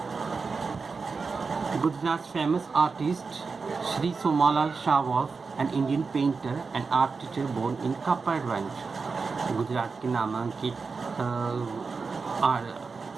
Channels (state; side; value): quieter; left; 4.7 dB